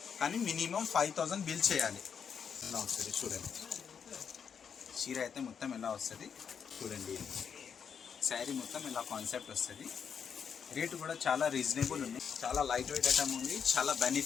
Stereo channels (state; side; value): quieter; right; 7.1 dB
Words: కానీ మినిమం 5000 బిల్ చేయాలి. ఇలా వస్తుంది చూడండి. చీర అయితే మొత్తం ఎలా వస్తుంది చూడండి. శారీ మొత్తం ఇలా కాన్సెప్ట్ వస్తుంది. రేటు కూడా చాలా రీజనబుల్ ఉంది. చాలా లైట్ వెయిట్ ఐటమ్ ఉంది, చాలా